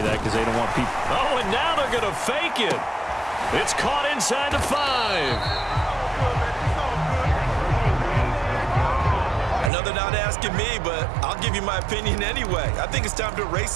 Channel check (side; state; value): left; drops out; at 9.7 s